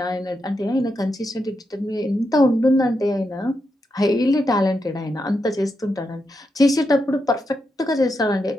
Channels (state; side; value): normal; both; correlation 0.84